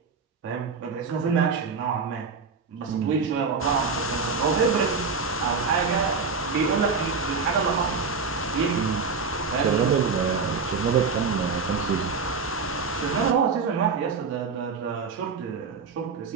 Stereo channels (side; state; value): left; quieter; 4.9 dB